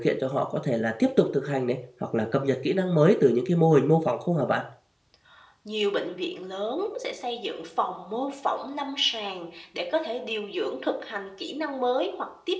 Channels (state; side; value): identical; both; correlation 1.00